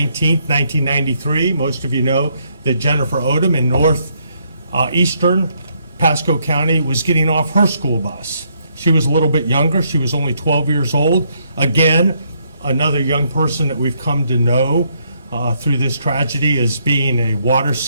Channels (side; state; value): both; inverted; correlation -0.73